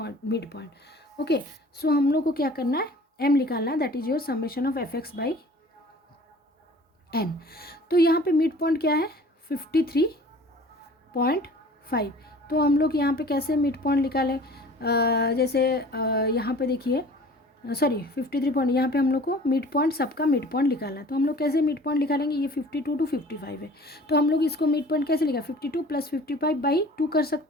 midpoint. Okay, so हम लोग को क्या करना है, m निकालना है, that is your summation of fx by n. तो यहाँ पे मिड पॉइंट क्या है 53.5। तो हम लोग यहाँ पे कैसे मिड पॉइंट निकालें, जैसे यहाँ पे देखिए, सॉरी 53 पॉइंट, यहाँ पे हम लोग को मिड पॉइंट, सबका मिड पॉइंट निकालना है। तो हम लोग कैसे मिड पॉइंट निकालेंगे, ये 52 टू 55 है, तो हम लोग इसको मिड पॉइंट कैसे लिखा, 52 प्लस 55 बाई 2 कर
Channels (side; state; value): both; normal; correlation 0.47